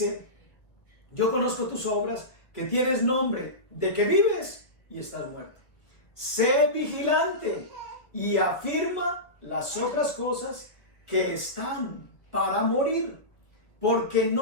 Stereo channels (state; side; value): late; right; 1.3 ms